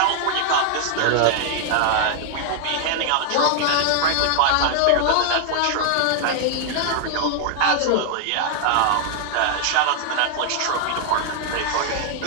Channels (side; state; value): both; different; correlation 0.00